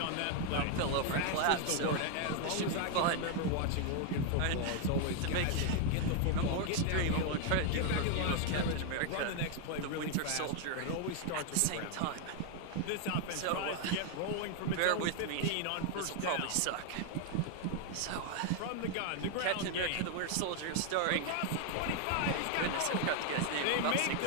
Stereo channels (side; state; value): both; different; correlation 0.00